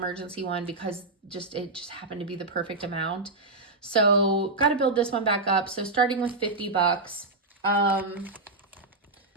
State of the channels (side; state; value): left; quieter; 3.2 dB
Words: one because it just happened to be the perfect amount. So got to build this one back up. So starting with $50.